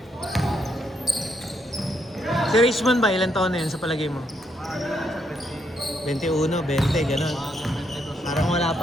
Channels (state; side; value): normal; both; correlation 0.76